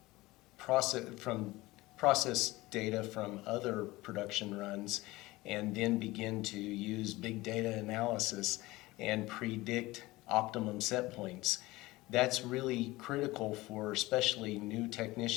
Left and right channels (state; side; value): quieter; right; 19.8 dB